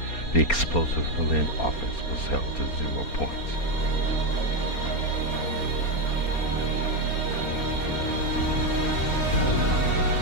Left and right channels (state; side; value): late; right; 4.3 ms